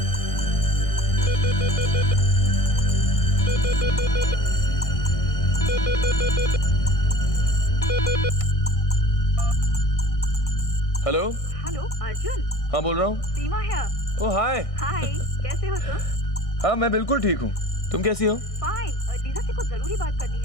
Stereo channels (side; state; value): right; late; 1.6 ms